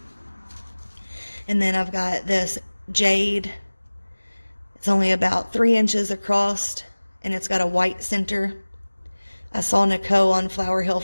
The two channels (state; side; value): inverted; both; correlation -1.00